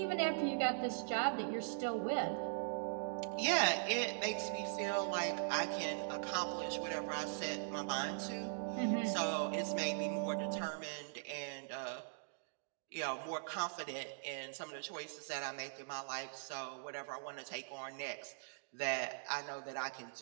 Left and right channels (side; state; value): left; silent; digital silence